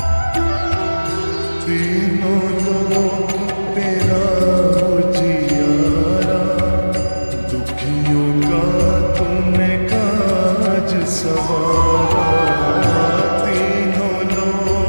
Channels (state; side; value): inverted; both; correlation -1.00